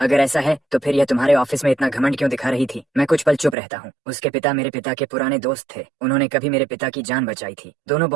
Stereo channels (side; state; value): left; drops out; at 3.6 s